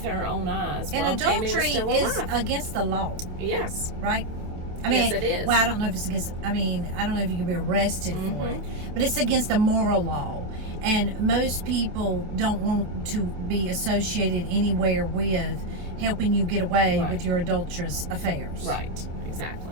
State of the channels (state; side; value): late; left; 27 ms